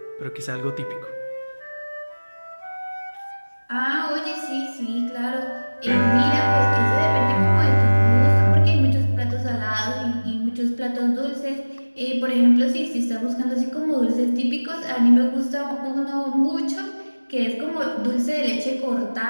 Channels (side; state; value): both; inverted; correlation -1.00